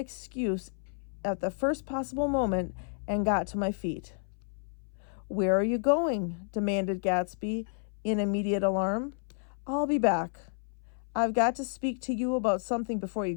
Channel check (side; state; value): right; silent; 57 dB below the other